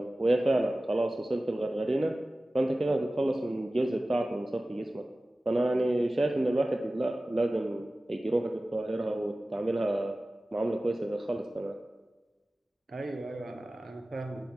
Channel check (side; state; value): both; normal; correlation 0.97